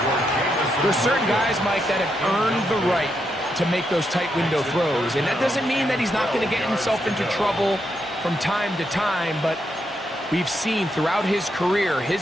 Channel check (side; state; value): both; normal; correlation 0.81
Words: There's certain guys, Mike, that have earned the right to make those tight window throws, and that doesn't mean that he's not going to get himself into trouble from time to time, but we've seen throughout his career